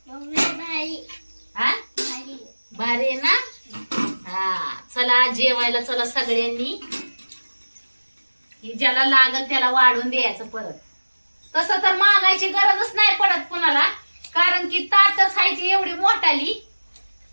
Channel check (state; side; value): inverted; both; correlation -1.00